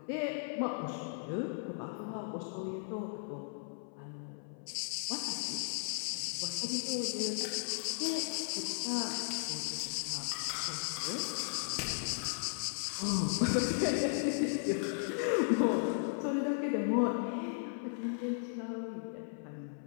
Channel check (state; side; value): silent; right; 54 dB below the other